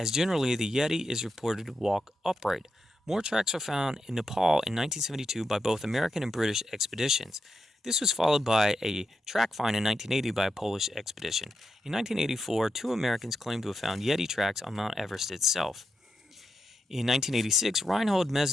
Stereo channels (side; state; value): both; normal; correlation 0.86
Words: generally the Yeti is reported to walk upright. More tracks were found in Nepal in 1972 by both American and British expeditions. This was followed by a track find in 1980 by a Polish expedition. In 1984, 2 Americans claimed to have found Yeti tracks on Mount Everest itself. In 1986, Reinhold